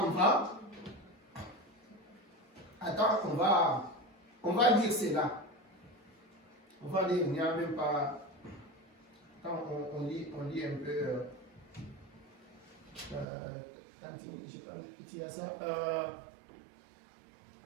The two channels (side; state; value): left; drops out; at 13.2 s